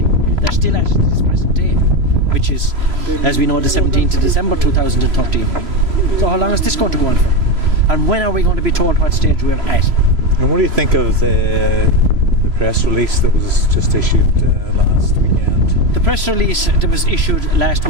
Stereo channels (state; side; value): late; left; 3.0 ms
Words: They're still at it this present day, which is, as we know, the 17th of December 2013. So how long is this going to go on for? And when are we going to be told what stage we're at? And what do you think of the press release that was just issued last weekend? The press release that was issued last